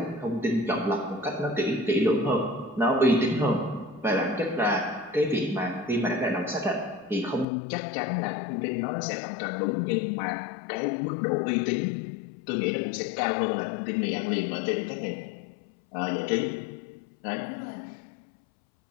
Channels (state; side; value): drops out; right; at 7.5 s